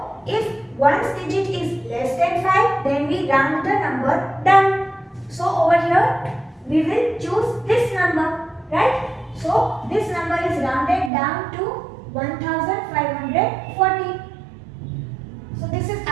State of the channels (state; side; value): drops out; left; at 11.1 s